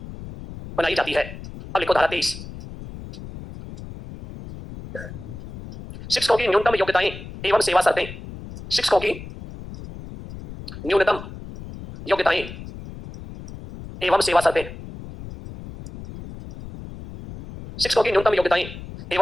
बनाई जाती है। अब लिखो धारा 23, शिक्षकों की न्यूनतम योग्यताएं एवं सेवा शर्तें। शिक्षकों की न्यूनतम योग्यताएं एवं सेवा शर्तें। शिक्षकों की न्यूनतम योग्यताएं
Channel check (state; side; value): noise; left; rumble, 13 dB below the sound